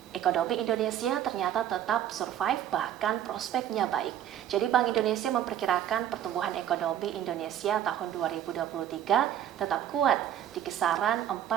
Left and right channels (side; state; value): left; quieter; 10.8 dB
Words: Ekonomi Indonesia ternyata tetap survive, bahkan prospeknya baik. Jadi Bank Indonesia memperkirakan pertumbuhan ekonomi Indonesia tahun 2023 tetap kuat di kisaran